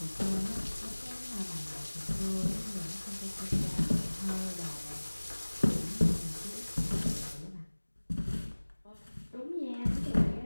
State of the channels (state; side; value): inverted; both; correlation -1.00